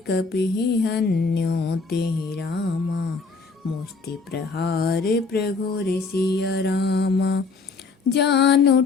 कपिहि हन्यो तेहि रामा, मुष्टि प्रहार प्रघोर सिया रामा। जानु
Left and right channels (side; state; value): right; quieter; 4.4 dB